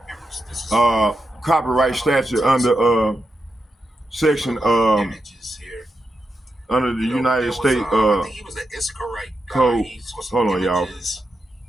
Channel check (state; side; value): normal; both; correlation 0.86